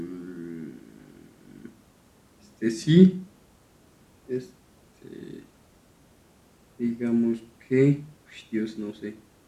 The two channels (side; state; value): both; identical; correlation 1.00